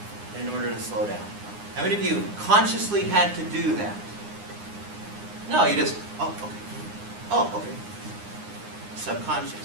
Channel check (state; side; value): late; left; 9.8 ms